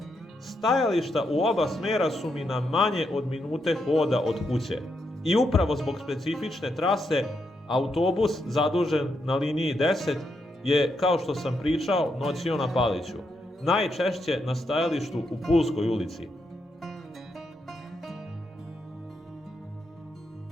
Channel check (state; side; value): normal; both; correlation 0.81